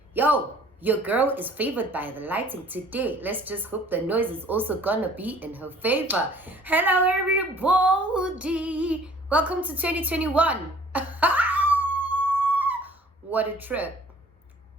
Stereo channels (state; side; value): normal; both; correlation 0.53